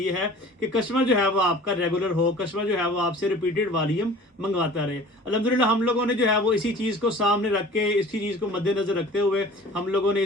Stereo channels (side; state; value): both; normal; correlation 0.44